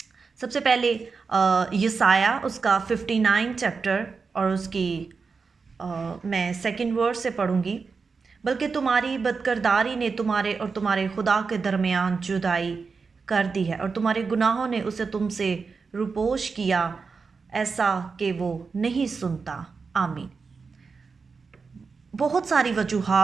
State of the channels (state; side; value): quieter; left; 4.9 dB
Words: सबसे पहले यसाया उसका 59 चैप्टर और उसकी मैं सेकंड वर्स से पढ़ूंगी। बल्कि तुम्हारी बदकिरदारी ने तुम्हारे और तुम्हारे खुदा के दरमियान जुदाई कर दी है, और तुम्हारे गुनाहों ने उसे तुमसे रुपोश किया, ऐसा कि वो नहीं सुनता। आमीन। बहुत सारी